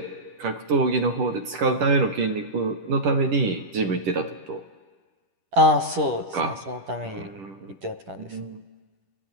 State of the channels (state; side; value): late; left; 10 ms